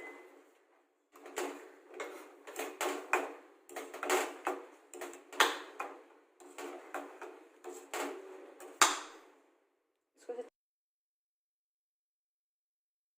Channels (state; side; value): identical; both; correlation 1.00